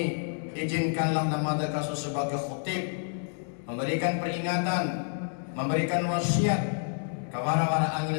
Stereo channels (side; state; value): right; silent; 58 dB below the other